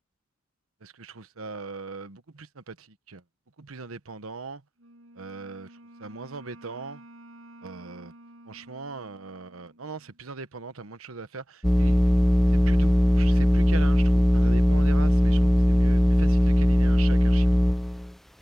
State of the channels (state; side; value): normal; both; correlation 0.98